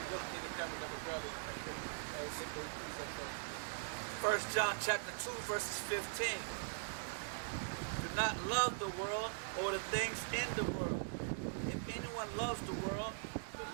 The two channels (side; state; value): left; silent; digital silence